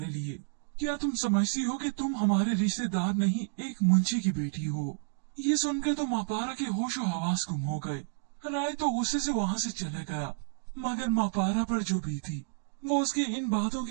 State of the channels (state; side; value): silent; left; digital silence